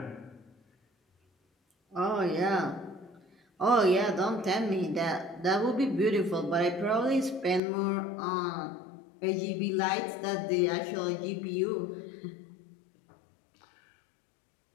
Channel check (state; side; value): drops out; right; at 7.6 s